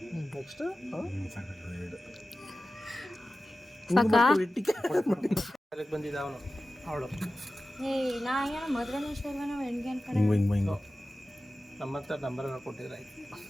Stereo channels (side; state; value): both; normal; correlation 0.95